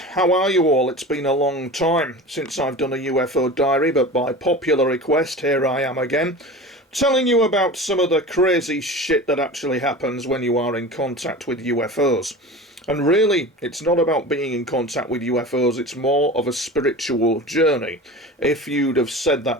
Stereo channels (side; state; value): both; normal; correlation 0.34